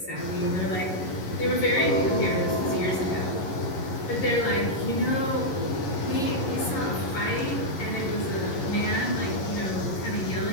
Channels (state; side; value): late; right; 11 ms